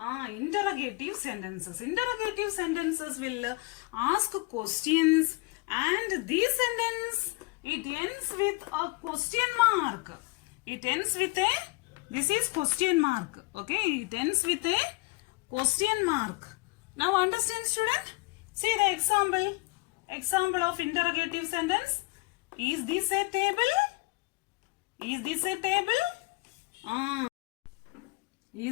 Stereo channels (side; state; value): right; quieter; 26.2 dB